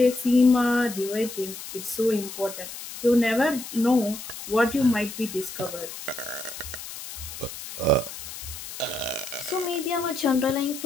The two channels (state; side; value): noise; left; hiss, 11 dB below the sound